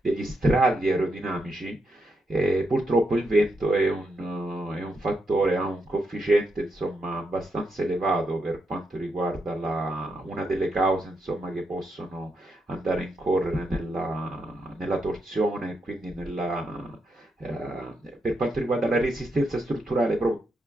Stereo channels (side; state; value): both; normal; correlation 0.82